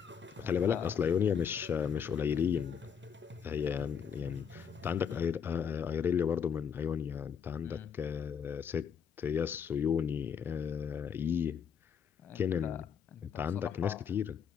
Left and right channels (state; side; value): quieter; right; 7.4 dB